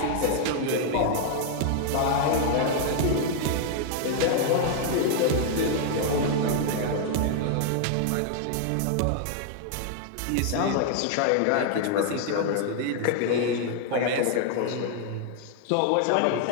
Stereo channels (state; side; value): different; both; correlation 0.00